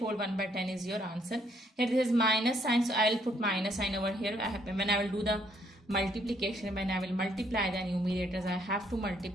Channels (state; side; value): normal; both; correlation 0.69